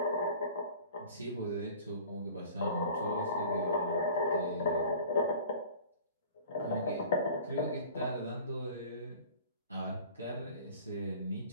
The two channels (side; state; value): both; inverted; correlation -0.44